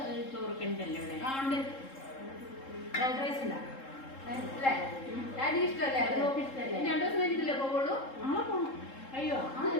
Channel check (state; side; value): late; right; 3.7 ms